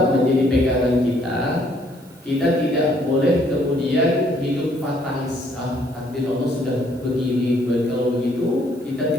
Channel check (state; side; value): noise; right; hiss, 29 dB below the sound